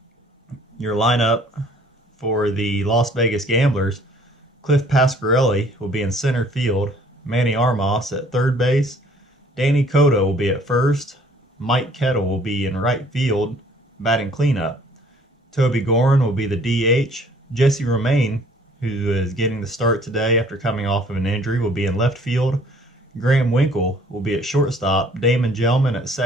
Your lineup for the Las Vegas Gamblers, Cliff Pasquarelli will be in center field, Manny Armas at third base, Danny Cotto will be at first, Mike Kettle will be in right field, batting cleanup. Toby Gorin will be the DH. Jesse Romaine, who is getting the start today after coming off of an injury, will be in left field. Graham Winkle will be at shortstop, Damon Gelman at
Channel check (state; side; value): normal; both; correlation 0.57